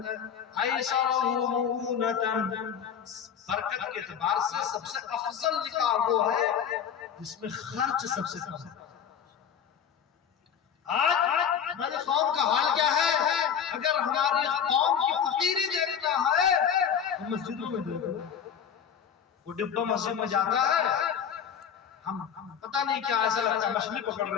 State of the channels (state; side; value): quieter; right; 8.0 dB